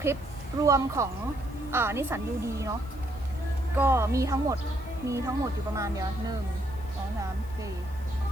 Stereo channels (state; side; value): noise; left; hiss, 25 dB below the sound